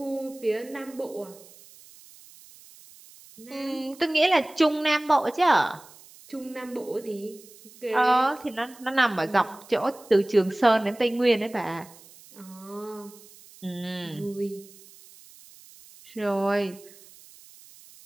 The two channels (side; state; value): right; noise; hiss, 22 dB below the sound